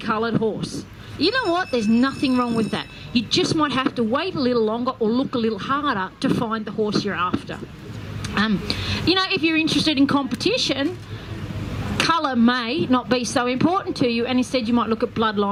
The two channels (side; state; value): both; identical; correlation 1.00